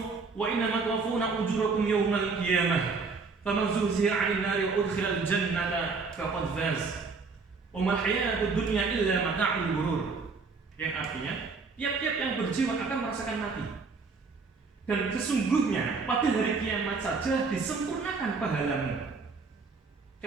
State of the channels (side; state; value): left; quieter; 4.5 dB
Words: wa innama tuwaffawna ujurakum yawmal qiyamah faman zuhziha 'anil nari wa udkhilal jannata faqad faz wa mal hayatud dunya illa mata'ul ghurur. Yang artinya tiap-tiap yang berjiwa akan merasakan mati, dan sesungguhnya pada hari kiamat saja disempurnakan pahalamu.